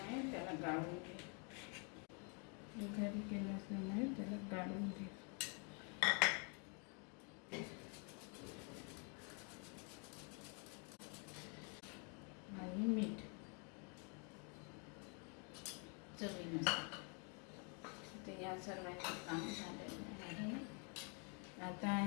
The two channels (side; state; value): right; quieter; 37.1 dB